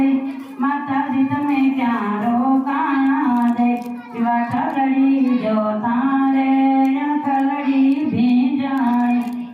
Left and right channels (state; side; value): identical; both; correlation 1.00